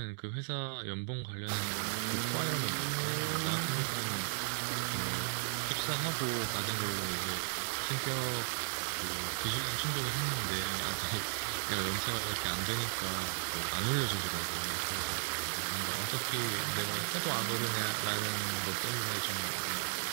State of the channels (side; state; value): left; silent; digital silence